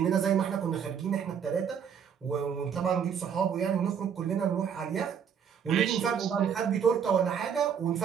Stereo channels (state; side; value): quieter; left; 7.6 dB